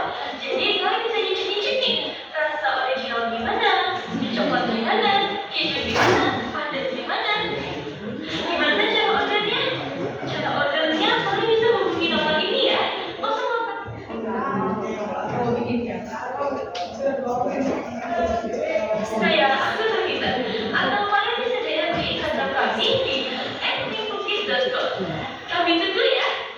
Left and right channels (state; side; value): identical; both; correlation 1.00